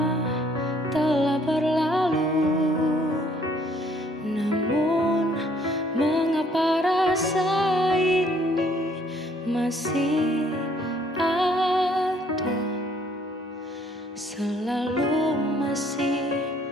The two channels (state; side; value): normal; both; correlation 0.63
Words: telah berlalu, namun mengapa rasa ini masih ada, selalu masih